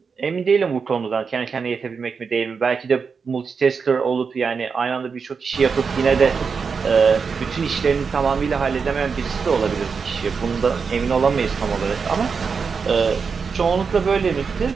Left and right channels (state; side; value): quieter; left; 5.5 dB